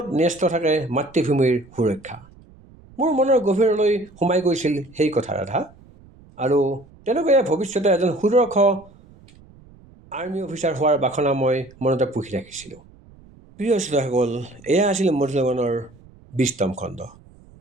ন্যস্ত থাকে মাতৃভূমিৰ সুৰক্ষা। মোৰ মনৰ গভীৰলৈ সোমাই গৈছিল সেই কথা ৰাধা, আৰু তেওঁলোকে ভৱিষ্যতে এজন সুদক্ষ আৰ্মি অফিচাৰ হোৱাৰ বাসনা মই মনতে পুহি ৰাখিছিলোঁ। প্ৰিয় শ্ৰোতাসকল, এয়া আছিল মধুৰ লগনৰ 20তম খণ্ড।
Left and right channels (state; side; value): noise; right; rumble, 25 dB below the sound